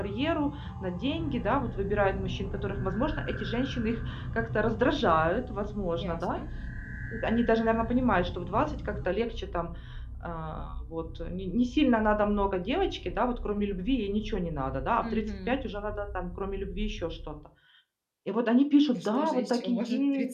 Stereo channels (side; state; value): both; identical; correlation 1.00